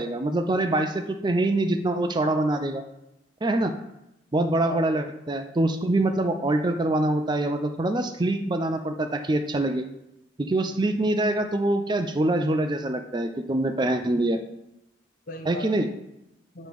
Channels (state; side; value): normal; both; correlation 0.70